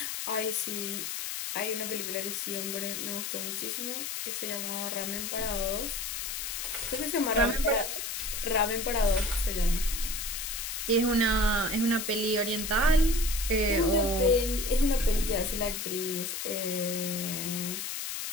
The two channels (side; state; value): left; noise; hiss, 4 dB below the sound